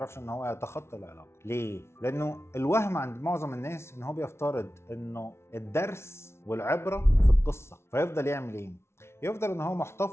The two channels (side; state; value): right; late; 0.13 ms